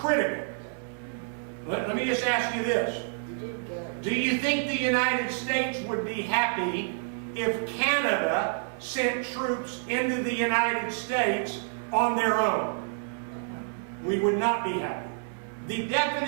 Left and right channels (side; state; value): left; silent; 58 dB below the other